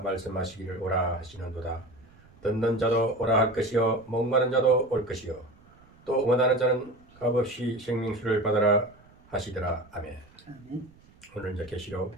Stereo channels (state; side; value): noise; right; rumble, 27 dB below the sound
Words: 오라 하시는도다. 듣는 자도 오라 할 것이요 목마른 자도 올 것이요 또 원하는 자는 값없이 생명수를 받아라 하시더라. 아멘. 오늘 이제 계시록